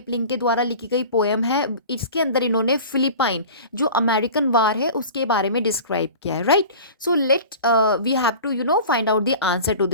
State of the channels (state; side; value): inverted; both; correlation -0.38